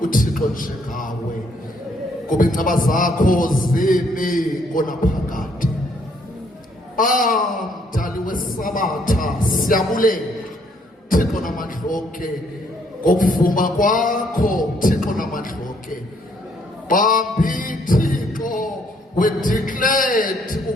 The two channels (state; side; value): normal; both; correlation 0.67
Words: uThixo njengawe. Kuba inceba zakho zimi konaphakade. Mdali wesabatha siyabulela Thixo namandla onke ngokuvuma kwakho Thixo namandla onke. Bambi Thixo we declared